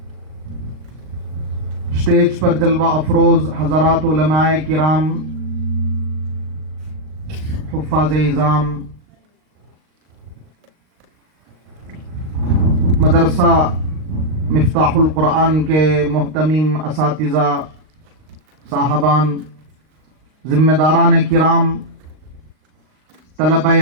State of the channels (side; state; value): left; late; 38 ms